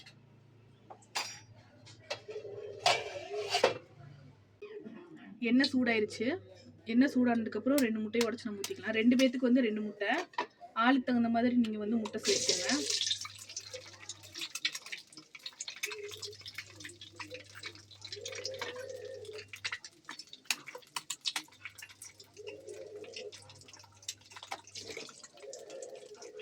எண்ணெய் சூடாயிருச்சு. எண்ணெய் சூடானதுக்கப்புறம் 2 முட்டையை உடச்சி நம்ம ஊற்றிக்கலாம். 2 பேத்துக்கு வந்து 2 முட்டை. ஆளுக்கு தகுந்த மாதிரி நீங்கள் வந்து முட்டை சேர்த்துக்கோங்க.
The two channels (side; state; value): both; identical; correlation 1.00